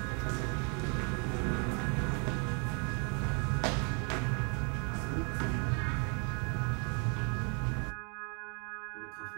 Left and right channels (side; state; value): left; quieter; 37.0 dB